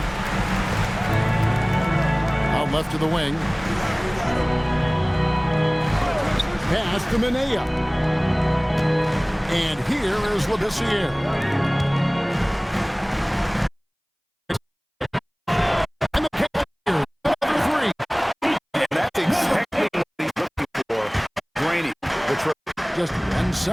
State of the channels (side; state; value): both; identical; correlation 1.00